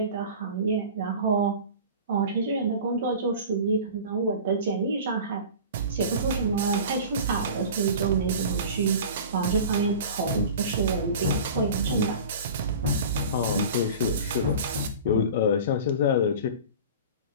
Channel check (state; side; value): inverted; both; correlation -0.37